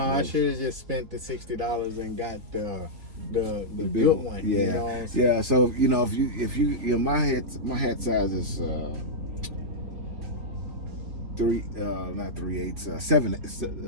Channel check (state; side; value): late; left; 3.6 ms